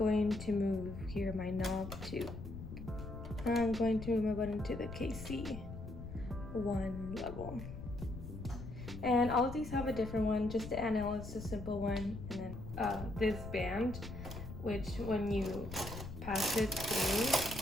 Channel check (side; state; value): left; noise; rumble, 10 dB below the sound